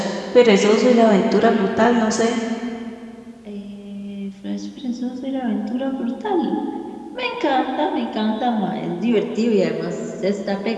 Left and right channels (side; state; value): both; identical; correlation 1.00